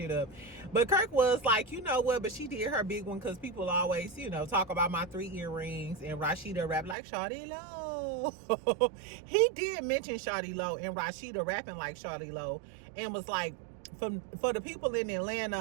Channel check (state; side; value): drops out; left; at 7.0 s